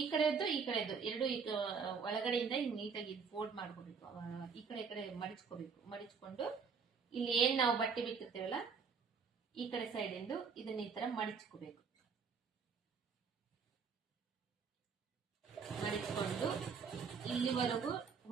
ಈ ಕಡೆದ್ದು ಈ ಕಡೆದ್ದು ಎರಡು ಒಳಗಡೆಯಿಂದ ಹಿಂಗ್ ನೀಟಾಗಿ ಫೋಲ್ಡ್ ಮಾಡ್ಕೋಬೇಕು. ಈ ಕಡೆ ಮಡಿಚ್ಕೋಬೇಕು. ಮಡಿಚ್ಕೊಂಡು ಇಲ್ಲಿ ಏನ್ ನಾವು ಬಟ್ಟೆ ಬಿಟ್ಟಿರ್ತೇವಲ್ಲ ಈ ಕಡೆ ಸೈಡ್ ಇಂದು ಇದನ್ನ ಈ ತರ ಮಡಿಚ್ಕೋಬೇಕು. ಮಡಿಚ್ಕೊಂಡು ಇಲ್ಲಿವರೆಗೂ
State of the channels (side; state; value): left; quieter; 5.7 dB